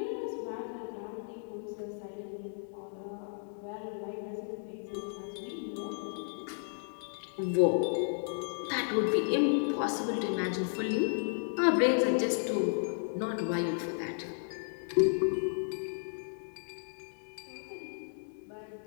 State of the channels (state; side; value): silent; right; digital silence